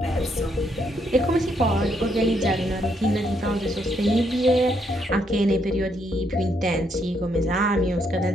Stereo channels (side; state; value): both; normal; correlation 0.74